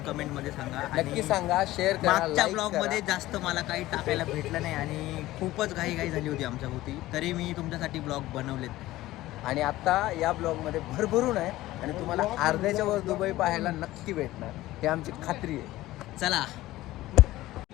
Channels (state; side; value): quieter; right; 16.6 dB